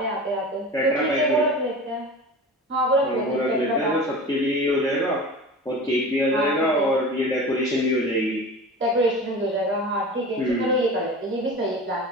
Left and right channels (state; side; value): normal; both; correlation 0.34